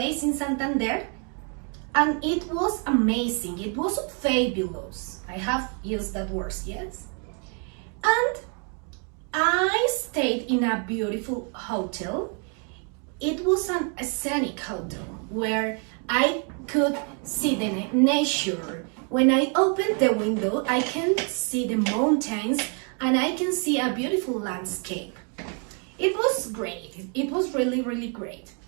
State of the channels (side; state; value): left; quieter; 39.2 dB